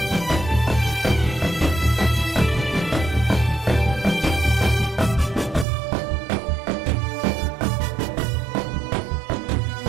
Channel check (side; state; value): left; drops out; at 5.7 s